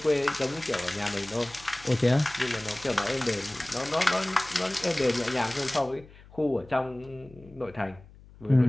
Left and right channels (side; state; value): left; noise; hum, 22 dB below the sound